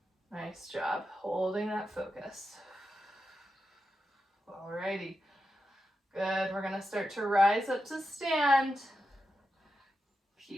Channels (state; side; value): normal; both; correlation 0.89